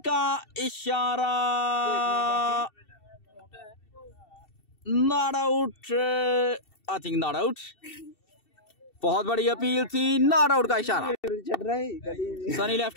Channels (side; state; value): right; late; 2.7 ms